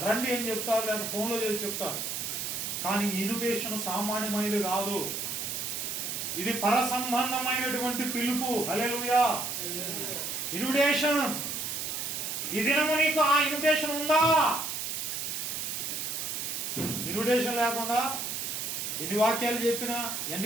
రండి అని చెప్తారు, లేదా ఫోన్లో చేసి చెప్తారు. కానీ ఇన్విటేషన్ సామాన్యమైనది కాదు, ఇది పర సంబంధమైనటువంటి పిలుపు. హల్లెలూయా. ఇన్విటేషన్. ఈ దినము నీకు ఆ ఇన్విటేషన్ ఉందా? ఇన్విటేషన్ లేకుండా ఎన్ని వాక్యాలు చెప్పినా,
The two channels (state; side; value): noise; right; hiss, 3 dB below the sound